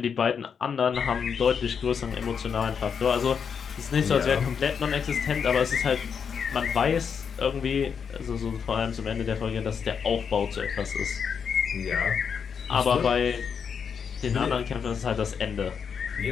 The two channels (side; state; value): right; quieter; 6.7 dB